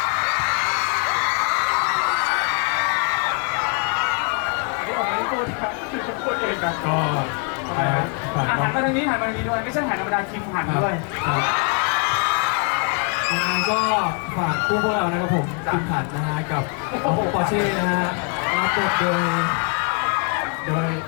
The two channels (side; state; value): right; quieter; 38.2 dB